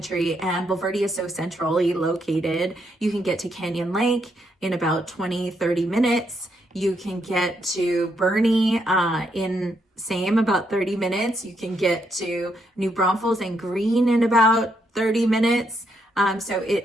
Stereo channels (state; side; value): normal; both; correlation 0.77